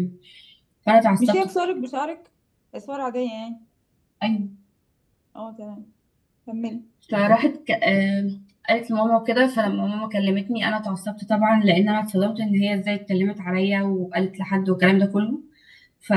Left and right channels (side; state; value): both; identical; correlation 1.00